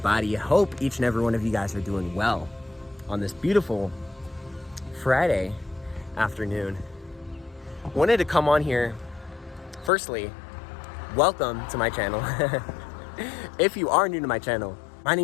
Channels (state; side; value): drops out; right; at 9.9 s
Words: Hope each and every one of you guys are doing well on this beautiful Friday afternoon. Wanted to come on here. Firstly, welcome to my channel. If you are new to my channel, my